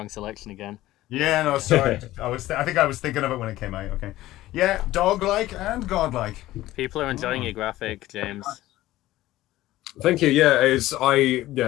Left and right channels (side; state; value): right; quieter; 15.9 dB